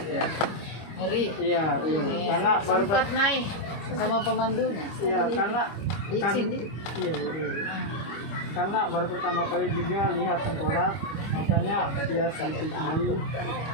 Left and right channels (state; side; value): late; right; 25 ms